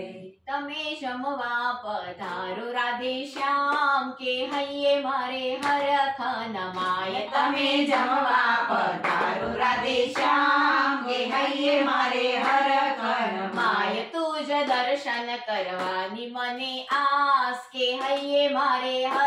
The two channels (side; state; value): both; identical; correlation 1.00